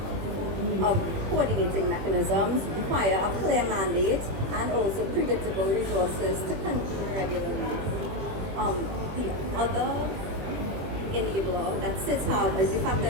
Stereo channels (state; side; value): late; left; 21 ms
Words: coordinating mechanisms require a clear mandate and also predictable resources to convene regularly. The other enabler that SIDS have is the fact